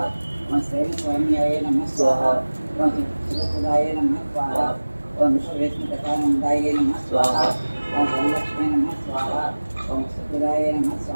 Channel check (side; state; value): both; inverted; correlation -1.00